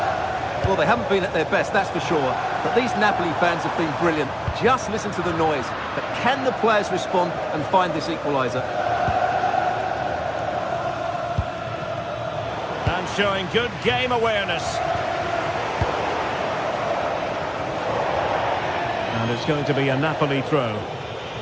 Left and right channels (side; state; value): both; identical; correlation 1.00